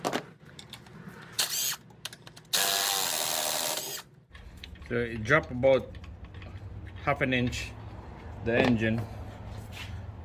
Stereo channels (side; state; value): both; identical; correlation 1.00